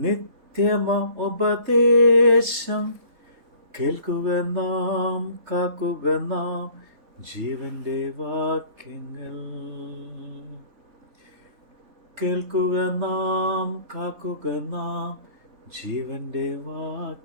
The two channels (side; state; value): left; late; 3.3 ms